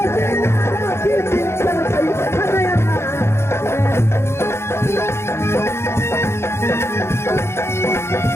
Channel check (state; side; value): late; right; 0.12 ms